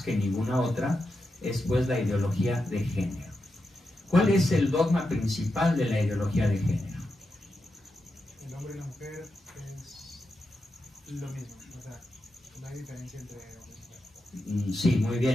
ninguna otra es pues la ideología de género. ¿Cuál es el dogma principal de la ideología de género? El hombre y la mujer es lo mismo, o sea, no hay diferencia entre hombre y mujer. Sí, muy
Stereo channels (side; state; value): both; normal; correlation 0.87